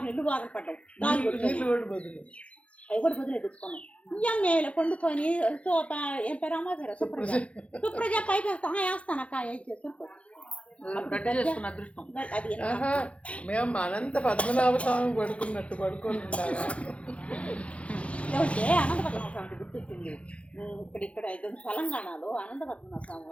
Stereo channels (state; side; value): late; right; 0.063 ms